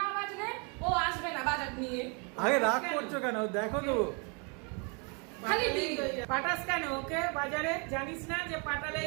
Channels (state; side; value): quieter; left; 34.6 dB